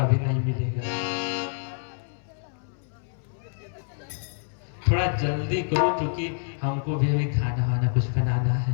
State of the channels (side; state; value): right; silent; 60 dB below the other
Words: भी नहीं मिलेगा। थोड़ा जल्दी करो क्योंकि हमको भी अभी खाना वाना कुछ बनाना है।